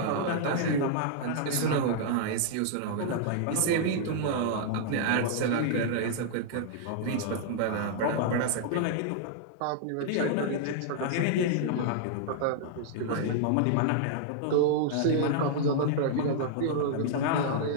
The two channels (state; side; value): different; both; correlation -0.01